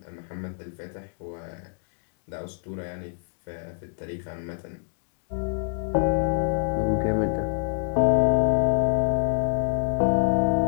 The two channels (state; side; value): silent; right; digital silence